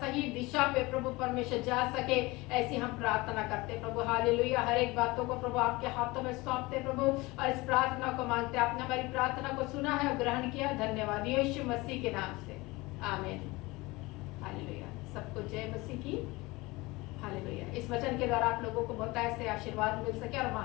दिशा पे प्रभु परमेश्वर जा सके, ऐसी हम प्रार्थना करते प्रभु। हालेलुया। हर एक बातों को प्रभु आपके हाथों में सौंपते प्रभु और इस प्रार्थना को मांगते। आपने हमारी प्रार्थना को सुना है और ग्रहण किया, धन्यवाद यीशु मसीह के नाम से, आमीन। हालेलुया। सबको जय मसीह की। हालेलुया। इस वचन के द्वारा आप लोगों को बहुत ऐसे आशीर्वाद मिल सके और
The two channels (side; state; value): right; quieter; 22.4 dB